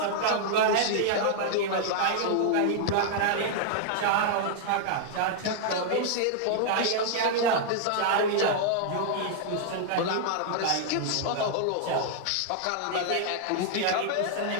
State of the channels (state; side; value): different; both; correlation -0.01